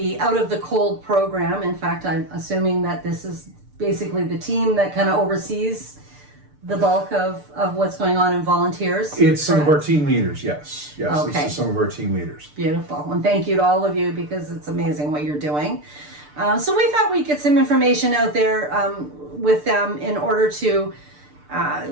Out of the Cold program. In fact, I'm assuming that this is basically the team that kind of oversees the bulk of what's going on in volunteers. It's some of our team leaders, yes. Yes, Okay. This is some of our team leaders. Beautiful. And thank you to all of you because it's amazing what you're doing. So we thought we'd get some information out there with them in order to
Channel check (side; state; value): left; late; 6.8 ms